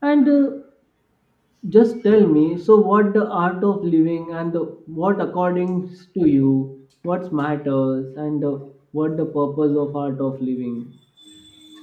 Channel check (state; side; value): identical; both; correlation 1.00